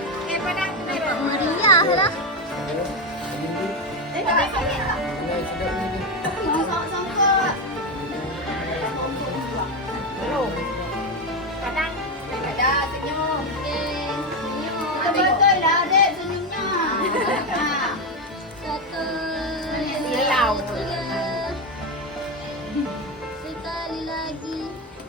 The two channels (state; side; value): normal; both; correlation 0.11